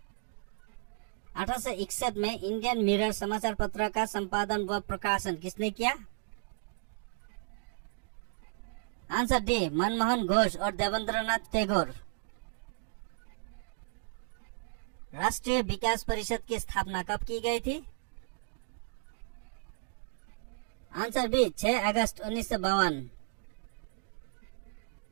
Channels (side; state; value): left; silent; digital silence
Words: 1861 में इंडियन मिरर समाचार पत्र का संपादन व प्रकाशन किसने किया? आंसर डी, मनमोहन घोष और देवेंद्रनाथ टैगोर। राष्ट्रीय विकास परिषद की स्थापना कब की गई थी? आंसर बी, 6 अगस्त 1952।